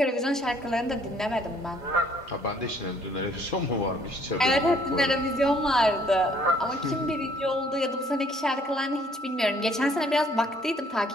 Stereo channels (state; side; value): normal; both; correlation 0.62